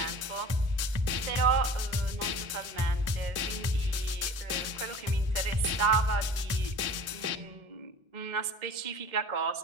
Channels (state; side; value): late; left; 1.4 ms